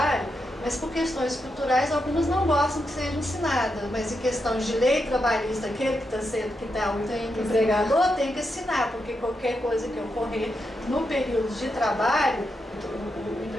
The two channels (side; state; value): both; normal; correlation 0.85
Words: mas por questões culturais algumas não gostam que seja assinada, mas em questões de lei trabalhista, aquele que está o empregador tem que assinar, porque qualquer coisa que ocorrer no período de trabalho, o